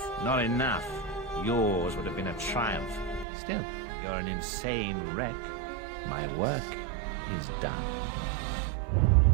Not enough. Yours would have been a triumph. Still, you're an insane wreck. My work is done.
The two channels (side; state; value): left; drops out; at 3.2 s